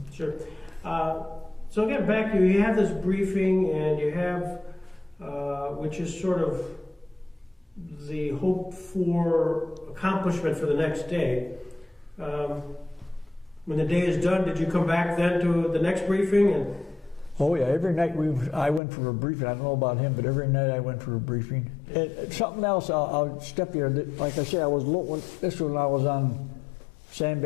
Sure. So again, back to you have this briefing, and you have, which is sort of the hope for accomplishment for the next day. When the day is done, did you come back then to the next briefing? And oh yeah, every night I went for a briefing. I don't know about him, but every night I went for a briefing. And something else, I'll step here. Like I said, this was when I was on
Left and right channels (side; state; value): right; drops out; at 18.8 s